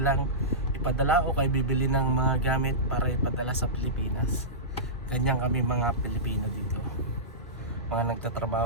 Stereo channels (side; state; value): both; normal; correlation -0.18